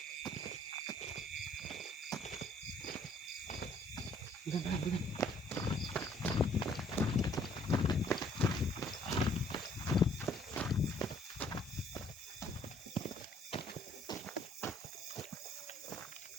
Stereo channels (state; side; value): normal; both; correlation 0.61